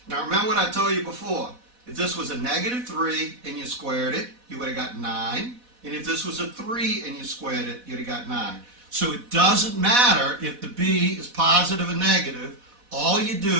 Now remember what I told you before. If this was a negative 3 and you squared it, you would have got 9. And if this was a 3 and you squared it, you'd have got 9. So it doesn't matter if the b is positive or negative. All you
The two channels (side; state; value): left; late; 4.1 ms